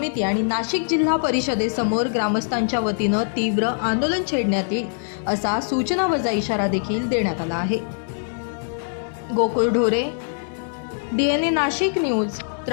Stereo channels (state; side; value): silent; right; digital silence